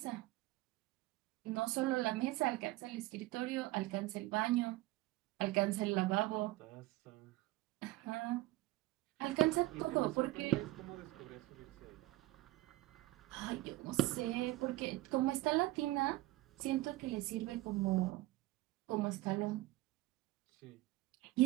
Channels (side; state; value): left; quieter; 17.9 dB